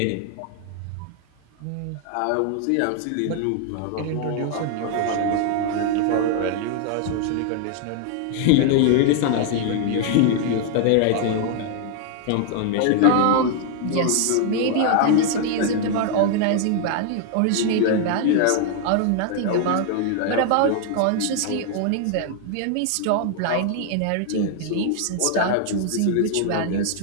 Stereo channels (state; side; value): different; both; correlation 0.00